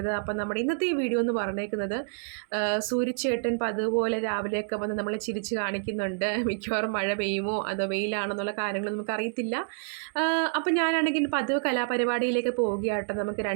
അപ്പം നമ്മുടെ ഇന്നത്തെ ഈ വീഡിയോ എന്ന് പറഞ്ഞേക്കുന്നത് സൂര്യചേട്ടൻ പതുപോലെ രാവിലെയൊക്കെ വന്ന് നമ്മളെ ചിരിച്ച് കാണിക്കുന്നുണ്ട്. മിക്കവാറും മഴ പെയ്യുമോ അതോ വെയിലാണെന്നുള്ള കാര്യങ്ങൾ നമുക്കറിയത്തില്ല. അപ്പം ഞാനാണെങ്കിൽ പതിവ് കലാപരിപാടിയിലേക്ക് പോവുകയാട്ടോ. നമുക്ക്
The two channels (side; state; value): left; silent; 59 dB below the other